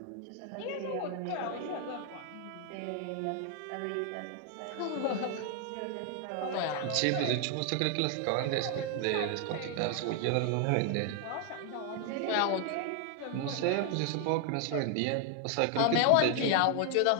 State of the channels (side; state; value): both; different; correlation 0.00